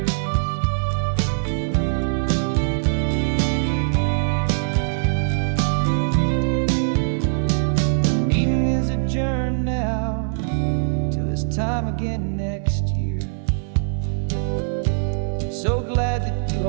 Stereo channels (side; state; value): left; silent; digital silence